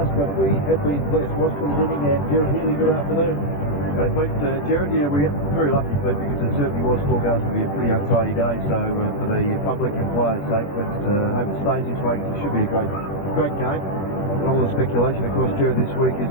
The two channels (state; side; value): late; right; 21 ms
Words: but we have been blessed. Washington winning, and Gerard Healy, good afternoon. Okay, Pete, Gerard, yeah, we're very lucky, Pete, because it certainly was forecast to be a pretty untidy day, so for the public and players' sake, let's hope it stays this way, because it should be a great game. And all the speculation, of course, Gerard, this week